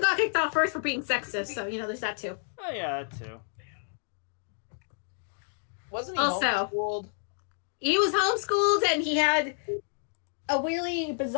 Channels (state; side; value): silent; right; digital silence